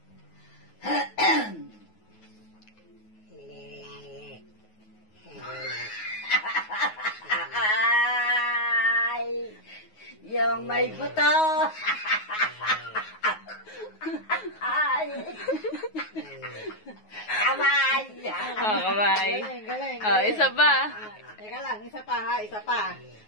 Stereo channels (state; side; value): late; right; 9.4 ms